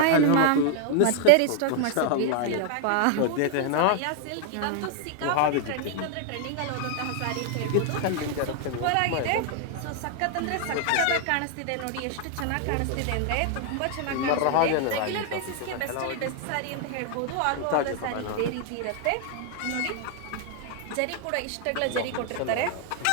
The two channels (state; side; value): different; both; correlation 0.00